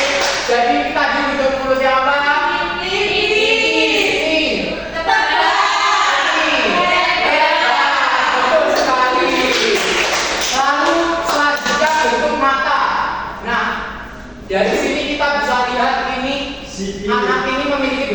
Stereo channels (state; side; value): identical; both; correlation 1.00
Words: Jadi tadi bentuk mulut yang apa? Dari sini kita bisa lihat ini anak ini memiliki